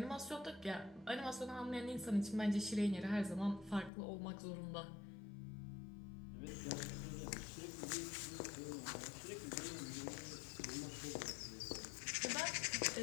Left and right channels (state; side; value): drops out; right; at 3.9 s